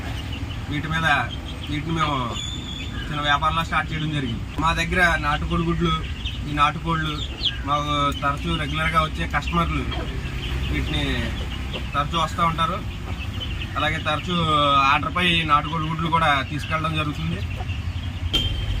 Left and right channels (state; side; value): identical; both; correlation 1.00